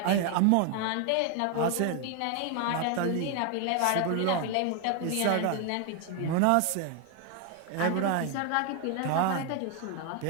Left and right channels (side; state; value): both; different; correlation 0.00